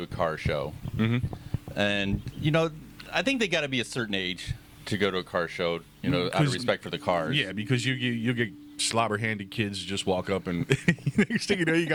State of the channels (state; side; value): identical; both; correlation 1.00